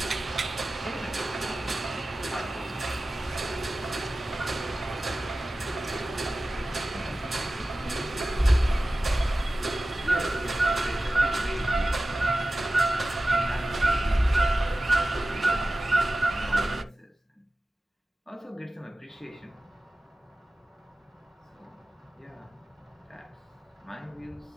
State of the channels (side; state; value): both; normal; correlation 0.96